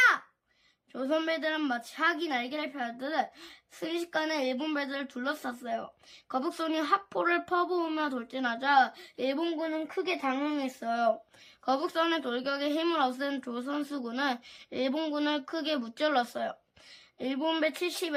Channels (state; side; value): identical; both; correlation 1.00